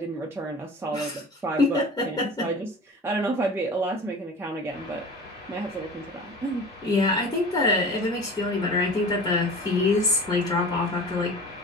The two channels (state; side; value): normal; both; correlation 0.37